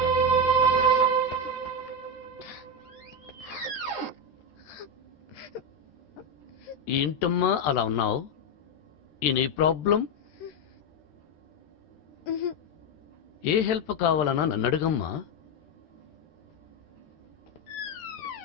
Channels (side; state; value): right; late; 13 ms